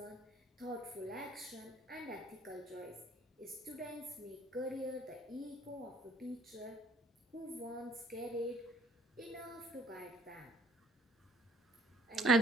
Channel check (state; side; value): normal; both; correlation 0.60